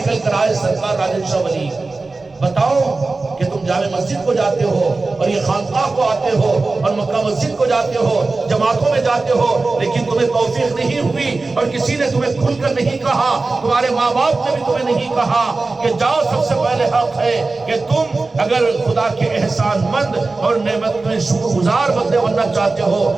کر آئے سرکار راجن شاہ ولی؟ بتاؤ کہ تم جامع مسجد کو جاتے ہو اور یہ خانقاہ کو آتے ہو اور مکہ مسجد کو جاتے ہو، جماعتوں میں جاتے ہو، لیکن تمہیں توفیق نہیں ہوئی اور کسی نے تمہیں کھل کر نہیں کہا، تمہارے ماں باپ نے بھی تمہیں نہیں کہا کہ جاؤ۔ سب سے پہلے حق ہے کہ تم اگر خدا کے احسان مند اور نعمت میں شکر گزار بندے بننا چاہتے ہو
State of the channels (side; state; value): left; quieter; 3.6 dB